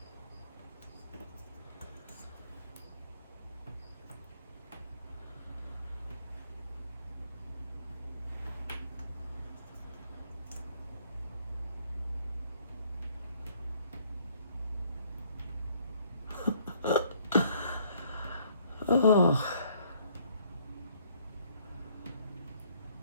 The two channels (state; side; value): inverted; both; correlation -0.63